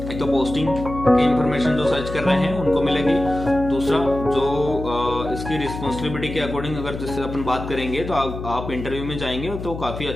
एक तो पोस्टिंग की इंफॉर्मेशन जो सर्च कर रहे हैं उनको मिलेगी, दूसरा जो इसकी रिस्पॉन्सिबिलिटी के अकॉर्डिंग अगर जिससे अपन बात करेंगे तो आप इंटरव्यू में जाएंगे तो काफ़ी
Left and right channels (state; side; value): noise; left; hum, 8 dB below the sound